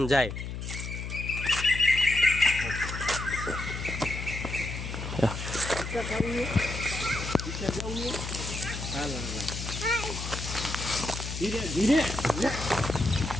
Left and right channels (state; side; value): noise; left; hum, 6 dB below the sound